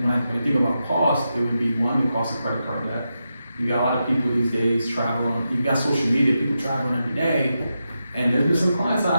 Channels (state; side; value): inverted; both; correlation -0.88